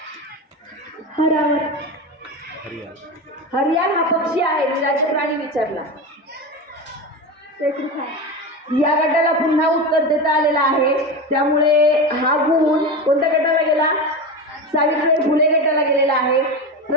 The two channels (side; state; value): both; normal; correlation 0.22